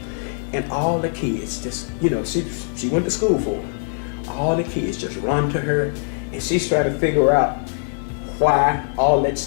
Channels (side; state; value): right; silent; digital silence